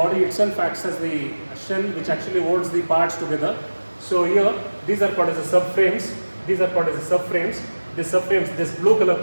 itself acts as the shell which actually holds the parts together. So here, these are called as the subframes. These are called as the subframes. The subframes, this blue color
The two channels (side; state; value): both; inverted; correlation -1.00